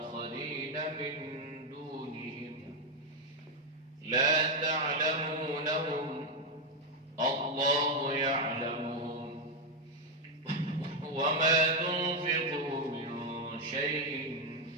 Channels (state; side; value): normal; both; correlation 0.03